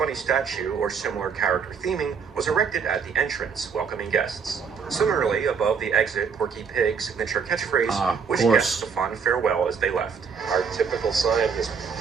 statue or similar character theming was erected at the entrance, welcoming guests. Similarly, above the exit, Porky Pig's signature catchphrase wished guests a fond farewell as they left. Our typical sign as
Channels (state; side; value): quieter; left; 6.1 dB